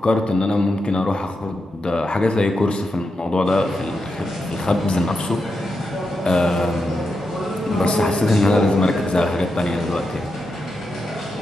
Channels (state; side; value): normal; both; correlation 0.86